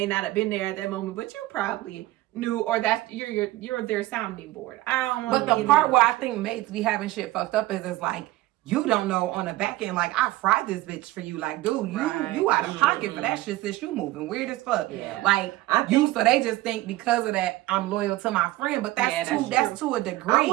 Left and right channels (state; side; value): quieter; left; 17.6 dB